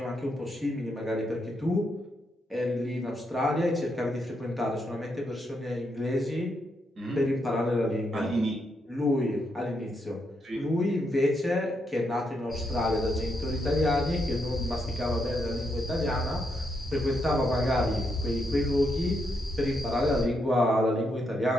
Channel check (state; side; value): normal; both; correlation 0.80